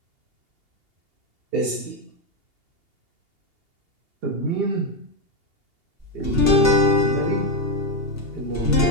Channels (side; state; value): left; late; 2.8 ms